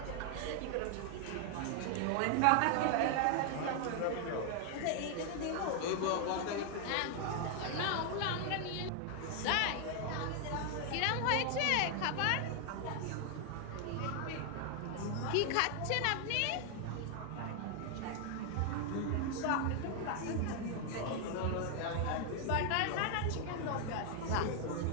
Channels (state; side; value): different; both; correlation 0.00